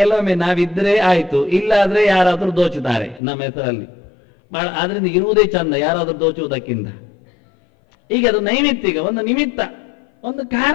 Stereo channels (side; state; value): right; drops out; at 3.2 s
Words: ನಾವಿದ್ರೆ ಆಯ್ತು, ಇಲ್ಲಾದ್ರೆ ಯಾರಾದ್ರೂ ದೋಚುತ್ತಾರೆ ನಮ್ಮ ಹೆಸರಲ್ಲಿ. ಆದ್ರಿಂದ ಇರುವುದೇ ಚಂದ, ಯಾರಾದ್ರೂ ದೋಚುವುದಕ್ಕಿಂತ. ಈಗ ಅದು ನೈಮಿತ್ತಿಕ, ಒಂದು ನಿಮಿತ್ತ, ಒಂದು